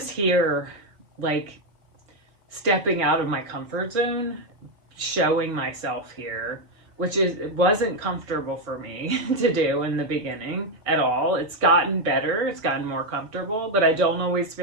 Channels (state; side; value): late; left; 4.4 ms